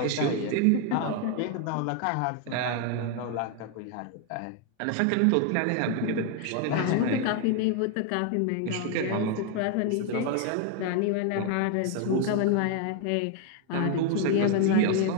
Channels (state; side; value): different; both; correlation 0.01